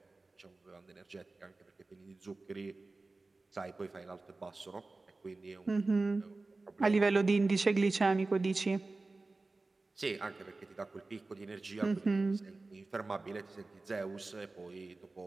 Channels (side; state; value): left; quieter; 3.4 dB